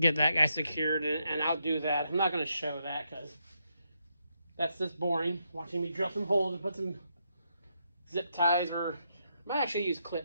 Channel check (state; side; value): inverted; both; correlation -0.80